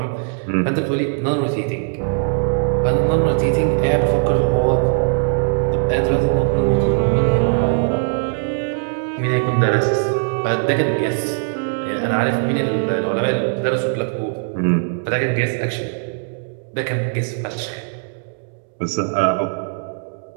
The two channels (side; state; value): left; silent; digital silence